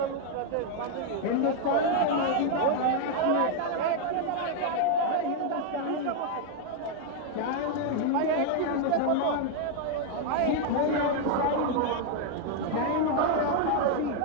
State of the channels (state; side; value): different; both; correlation 0.00